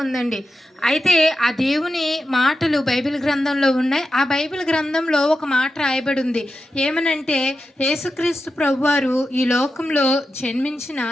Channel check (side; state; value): both; normal; correlation 0.90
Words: ఉందండి. అయితే ఆ దేవుని మాటలు బైబిల్ గ్రంథంలో ఉన్నాయి. ఆ బైబిల్ గ్రంథంలో ఒక మాట రాయబడి ఉంది. ఏమనంటే యేసుక్రీస్తు ప్రభువారు ఈ లోకంలో జన్మించిన